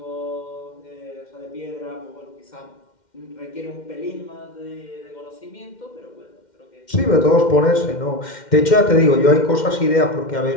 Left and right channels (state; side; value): late; right; 2.1 ms